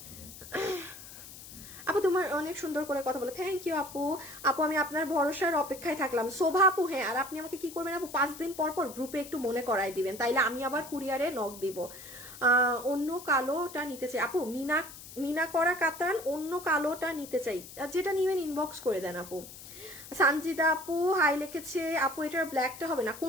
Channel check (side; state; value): left; noise; hiss, 15 dB below the sound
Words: আপু তোমার অনেক সুন্দর করে কথা বলে, থ্যাংক ইউ আপু। আপু আমি আপনার ভরসার অপেক্ষায় থাকলাম। শোভা আপু, হ্যাঁ, আর আপনি আমাকে কি করবেন আপু, 5 দিন পর পর গ্রুপে একটু মনে করাই দিবেন, তাইলে আমি আবার কুরিয়ারে নক দিব। অন্য কালোটা নিতে চাই আপু, মিনা করা কাতান, অন্য কালোটা নিতে চাই, যেটা নিবেন ইনবক্স করে দেন আপু। সানজিদা আপু হাই লিখেছে, আপু এটার ব্ল্যাকটা হবে না,